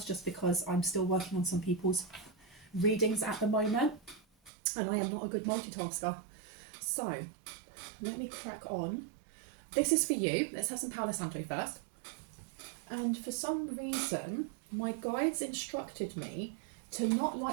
just because I'm still working on some people's readings at the moment, and I am not a good multitasker. So, let me crack on. This is for you. Let's have some Palo Santo first. And for some reason, my guides instructed me to not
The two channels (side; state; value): left; drops out; at 4.5 s